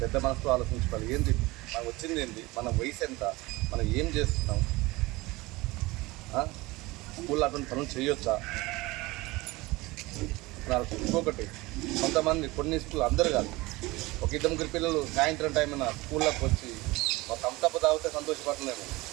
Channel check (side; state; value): left; quieter; 21.5 dB